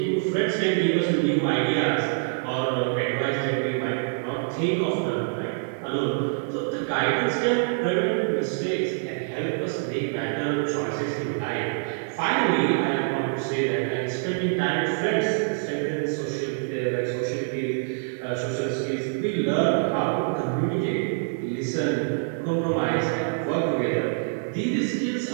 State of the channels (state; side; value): silent; left; digital silence